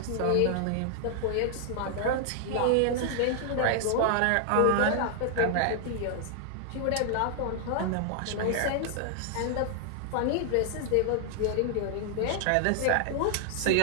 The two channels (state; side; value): different; both; correlation 0.00